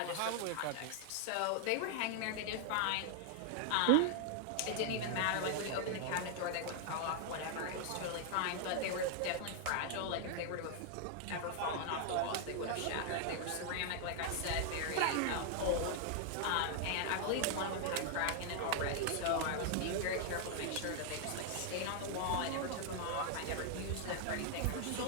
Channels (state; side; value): different; both; correlation 0.00